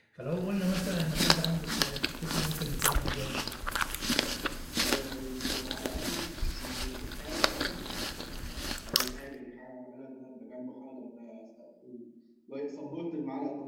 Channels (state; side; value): identical; both; correlation 1.00